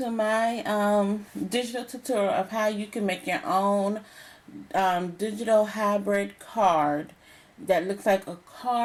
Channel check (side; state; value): both; identical; correlation 1.00